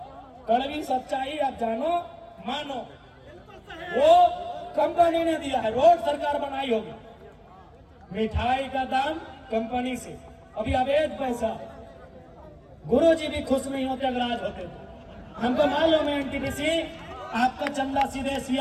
कड़वी सच्चाई आप जानो मानो, वो कंपनी ने दिया है। रोड सरकार बनाई होगी, मिठाई का दाम कंपनी से। अभी अवैध पैसा, गुरुजी भी खुश नहीं होते अगर आज होते तो। हमको मालूम है एनटीपीसी आपका चंदा सीधे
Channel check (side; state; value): both; identical; correlation 1.00